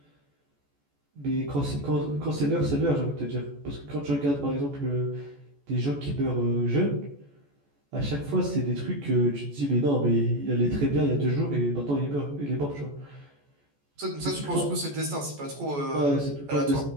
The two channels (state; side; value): late; left; 14 ms